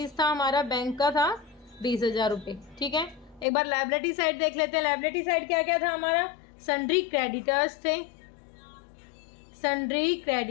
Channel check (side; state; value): right; drops out; at 3.5 s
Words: था हमारा, बैंक का था 20,000 रुपये। ठीक है, एक बार लायबिलिटी साइड देख लेते हैं। लायबिलिटी साइड क्या क्या था हमारा, सन्ड्री क्रेडिटर्स थे। सन्ड्री